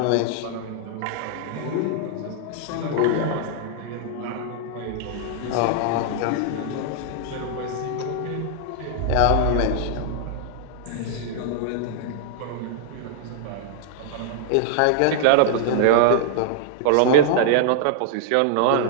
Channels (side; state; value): both; different; correlation -0.01